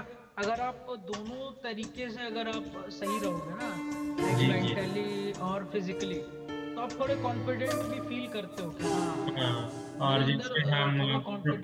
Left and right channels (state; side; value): identical; both; correlation 1.00